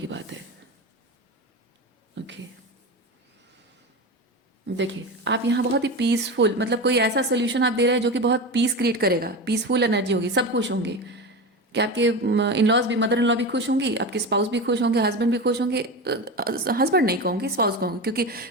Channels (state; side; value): normal; both; correlation 0.23